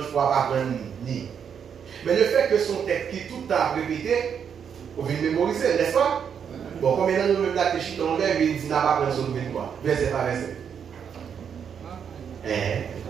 pour pas prendre ni. Mais le fait que son texte qui tout le temps répété, on vient mémoriser, n'est-ce pas? Bon, comme maintenant nous même là que Chita on lève, il dit n'a pas prendre son nouvelle quoi. Verset par verset.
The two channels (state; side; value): quieter; left; 7.6 dB